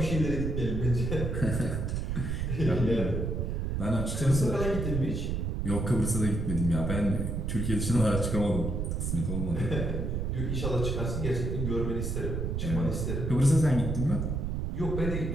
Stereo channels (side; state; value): right; noise; rumble, 1 dB below the sound